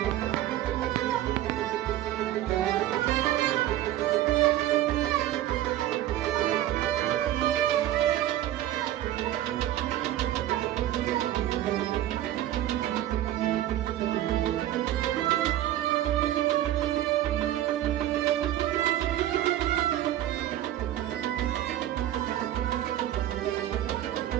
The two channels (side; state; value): left; quieter; 13.2 dB